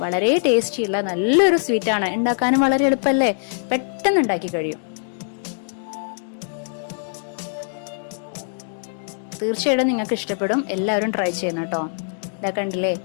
വളരെ ടേസ്റ്റിയുള്ള നല്ലൊരു സ്വീറ്റാണ്. ഉണ്ടാക്കാനും വളരെ എളുപ്പമല്ലേ, പെട്ടെന്ന് ഉണ്ടാക്കി കഴിയും. തീർച്ചയായിട്ടും നിങ്ങൾക്ക് ഇഷ്ടപ്പെടും. എല്ലാവരും ട്രൈ ചെയ്യണം കേട്ടോ. ഇതാ കണ്ടില്ലേ,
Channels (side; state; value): right; silent; digital silence